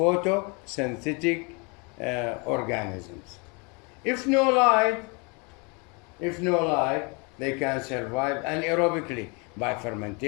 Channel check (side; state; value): right; quieter; 31.4 dB